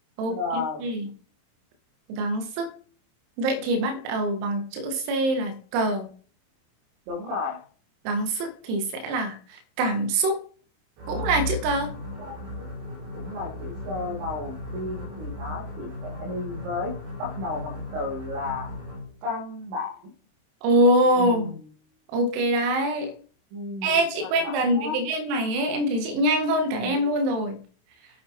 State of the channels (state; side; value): late; left; 27 ms